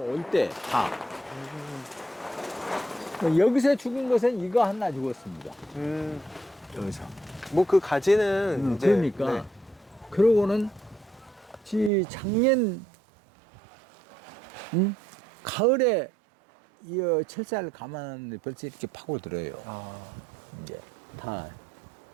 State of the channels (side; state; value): left; drops out; at 11.9 s